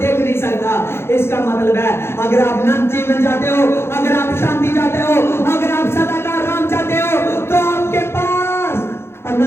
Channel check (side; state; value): right; late; 0.12 ms